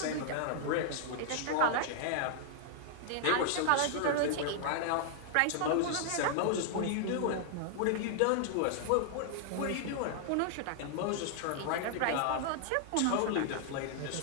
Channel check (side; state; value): both; different; correlation -0.01